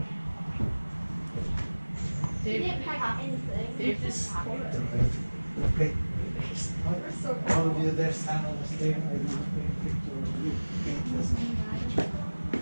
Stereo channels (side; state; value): both; inverted; correlation -1.00